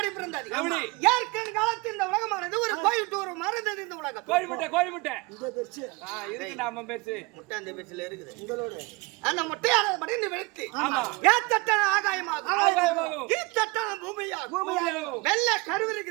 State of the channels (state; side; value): quieter; left; 25.7 dB